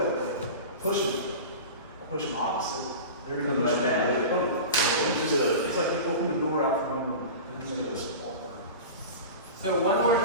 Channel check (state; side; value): inverted; both; correlation -0.31